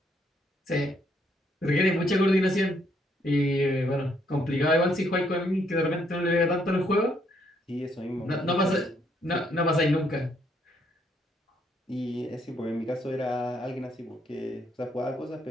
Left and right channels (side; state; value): both; normal; correlation 0.71